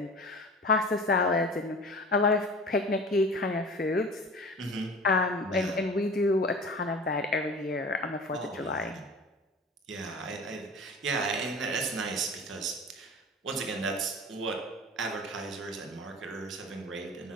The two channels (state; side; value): normal; both; correlation 0.39